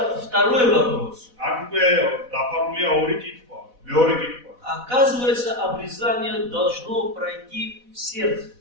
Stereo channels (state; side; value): late; left; 4.1 ms